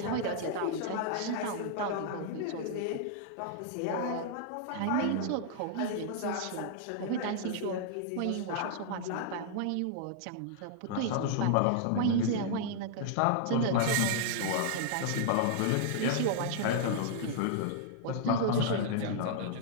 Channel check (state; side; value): different; both; correlation -0.01